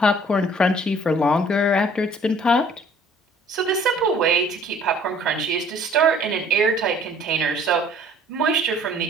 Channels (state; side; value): normal; both; correlation 0.55